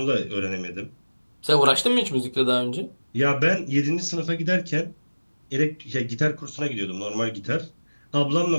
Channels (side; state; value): both; inverted; correlation -1.00